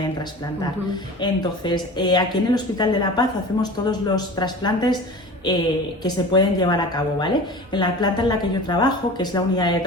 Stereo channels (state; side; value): normal; both; correlation 0.36